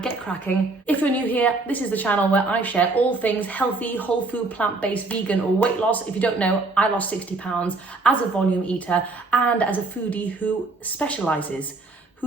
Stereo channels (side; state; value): left; quieter; 3.5 dB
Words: get cracking. If you're new here, this is the channel where I share all things healthy, whole food, plant-based, vegan, or weight loss. If you don't know, I lost 60 pounds as a volume eater and as a foodie who specializes,